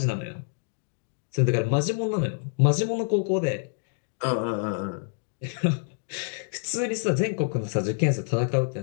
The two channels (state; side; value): silent; right; digital silence